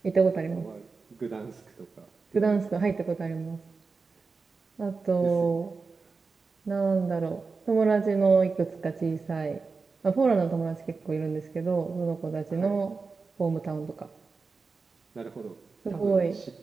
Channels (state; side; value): quieter; left; 4.4 dB